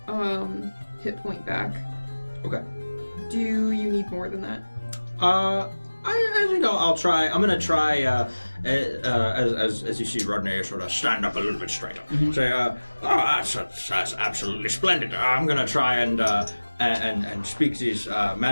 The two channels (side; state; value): both; inverted; correlation -1.00